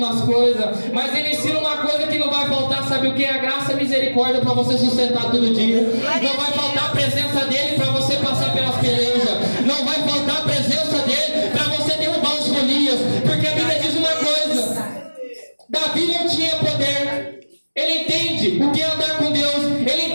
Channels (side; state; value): both; inverted; correlation -1.00